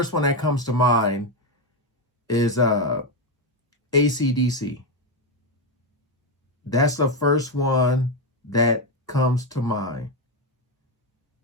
one that comes to mind is AC/DC. That's the first one that comes to mind.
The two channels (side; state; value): both; normal; correlation 0.08